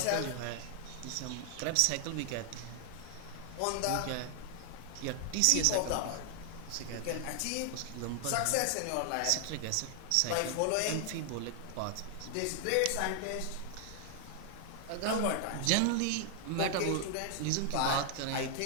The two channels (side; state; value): both; different; correlation 0.00